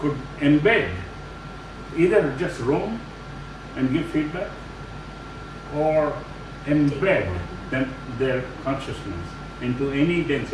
embed, either just roam and give feedback, or embed their consciousness into any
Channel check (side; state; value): both; identical; correlation 1.00